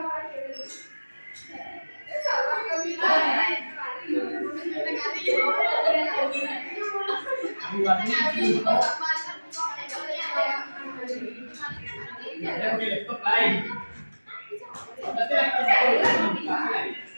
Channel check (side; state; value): both; inverted; correlation -1.00